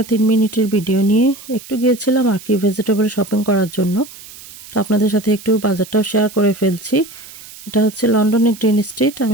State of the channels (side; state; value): right; noise; hiss, 18 dB below the sound